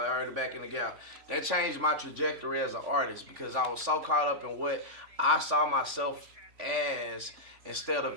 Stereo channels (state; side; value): late; left; 3.2 ms